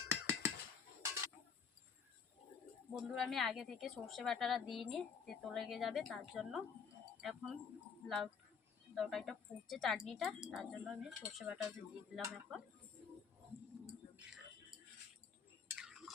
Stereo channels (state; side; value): quieter; right; 6.3 dB